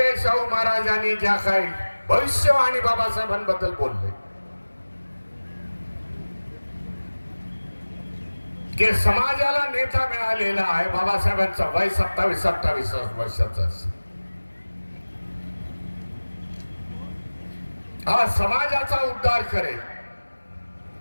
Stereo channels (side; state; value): both; inverted; correlation -1.00